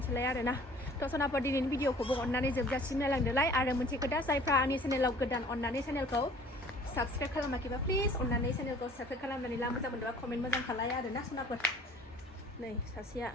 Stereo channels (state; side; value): normal; both; correlation 0.51